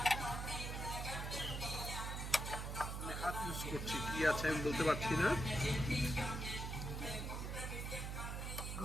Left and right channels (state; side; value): noise; right; hum, 4 dB below the sound